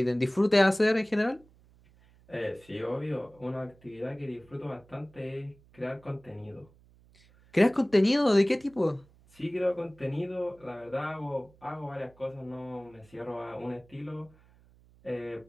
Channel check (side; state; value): right; noise; hum, 28 dB below the sound